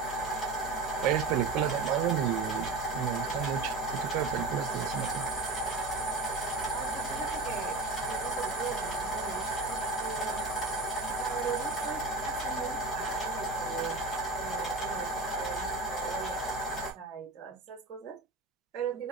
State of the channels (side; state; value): left; quieter; 3.6 dB